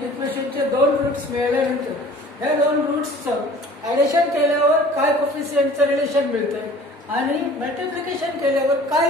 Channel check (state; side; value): normal; both; correlation 0.47